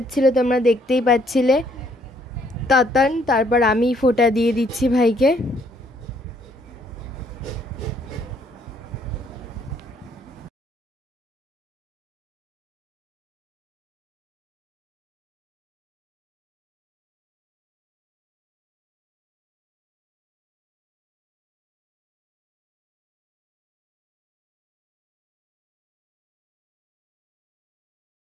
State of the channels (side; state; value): both; normal; correlation 0.66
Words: তোমরা দেখতেই পাচ্ছিলে তাতান, তারপর আমি ফোঁটা দিয়ে দিচ্ছি ভাইকে।